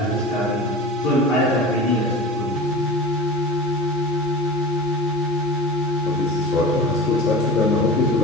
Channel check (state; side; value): normal; both; correlation 0.32